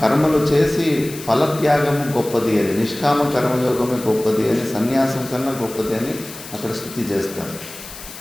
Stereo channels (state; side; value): noise; left; hiss, 14 dB below the sound